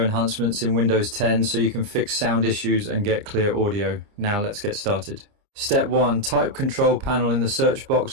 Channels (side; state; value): left; late; 29 ms